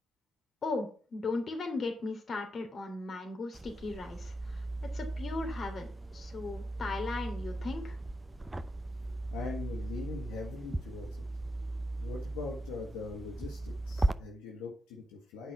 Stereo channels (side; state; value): both; normal; correlation 0.86